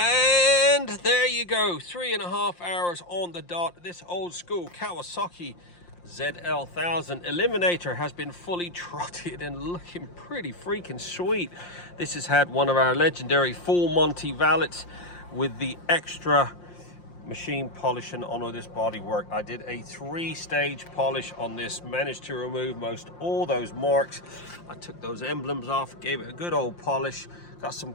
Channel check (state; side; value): late; right; 5.7 ms